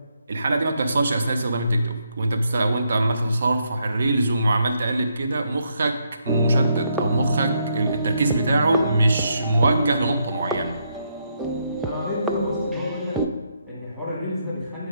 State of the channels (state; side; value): inverted; both; correlation -0.77